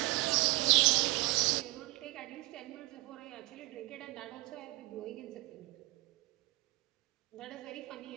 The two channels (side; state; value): left; quieter; 22.2 dB